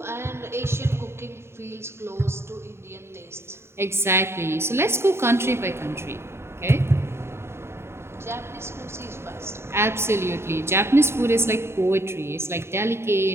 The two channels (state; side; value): late; left; 0.12 ms